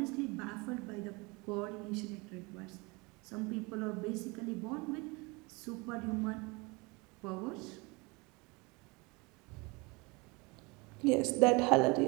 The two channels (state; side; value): quieter; left; 26.7 dB